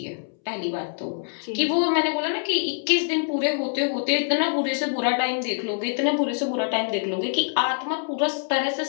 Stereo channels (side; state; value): right; silent; 62 dB below the other